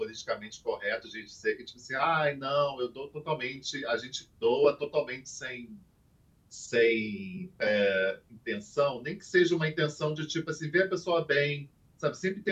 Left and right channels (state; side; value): identical; both; correlation 1.00